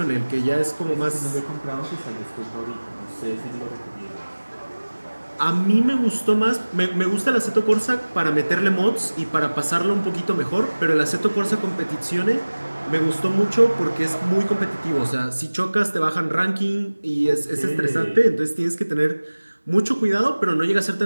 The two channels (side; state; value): both; inverted; correlation -1.00